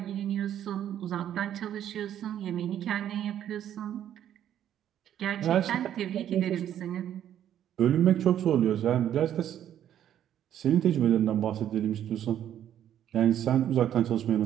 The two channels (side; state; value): left; quieter; 10.7 dB